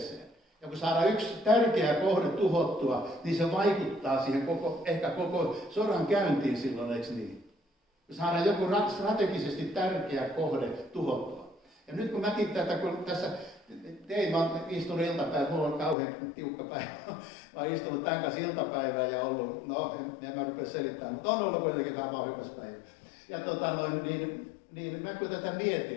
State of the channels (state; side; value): drops out; right; at 16.0 s